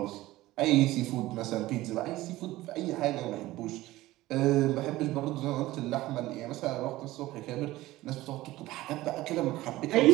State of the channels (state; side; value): quieter; left; 17.2 dB